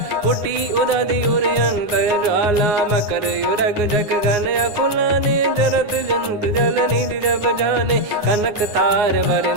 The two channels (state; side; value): late; left; 9.7 ms